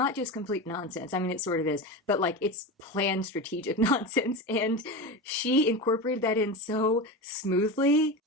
just complete nonsense. I mean, it sort of is, but like it's planned strategic nonsense, and she incorporated that in so smoothly.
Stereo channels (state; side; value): normal; both; correlation 0.23